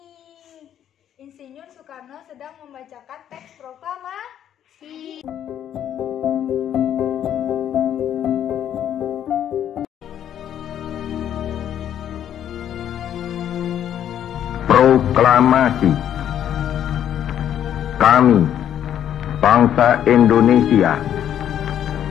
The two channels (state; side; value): quieter; right; 10.2 dB